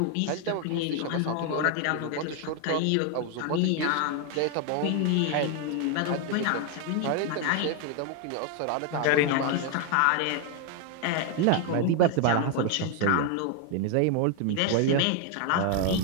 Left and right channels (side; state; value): both; different; correlation 0.01